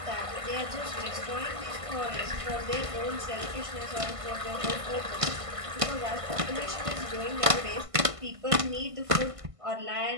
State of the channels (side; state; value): left; late; 1.5 ms